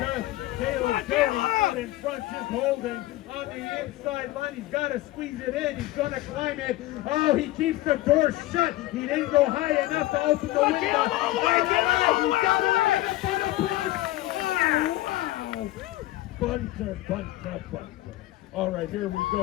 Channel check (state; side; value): quieter; right; 17.1 dB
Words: Caleb Cody out in front, just holding on the inside line. He's got to squeeze it in. He's going to climb it. Oh, he keeps the door shut. He didn't go high enough to open the window. Caleb, all the way, Caleb, all the way, He's got all the it way. right up on the block. Oh, wow. Bunter. All right, here we